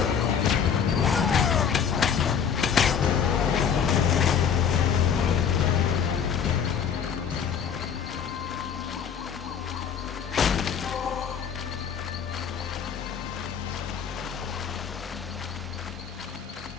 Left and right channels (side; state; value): right; quieter; 7.5 dB